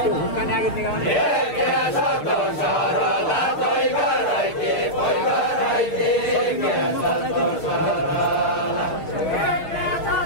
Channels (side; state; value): right; late; 6.6 ms